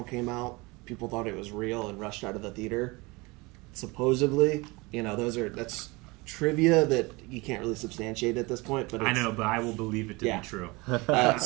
came out, people thought it was real and rushed out of the theater. Supposedly, you know, that's trivia that you can't really substantiate at this point. But I know, but I will believe it to be true.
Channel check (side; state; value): left; quieter; 24.7 dB